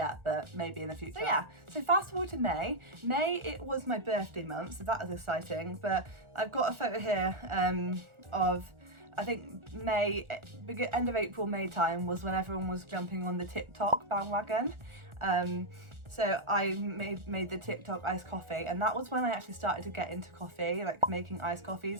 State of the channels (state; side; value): late; left; 1.4 ms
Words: but maybe in the future. So yeah, so fast forward to May. May, it was my birthday month, so that was exciting, but I've got a photo here of, I think May, end of April, May time was when everyone was jumping on the TikTok bandwagon. So I made the TikTok iced coffee, and that was when I actually started to get into coffee, like making iced